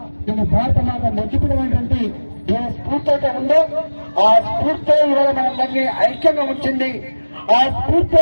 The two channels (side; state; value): both; inverted; correlation -1.00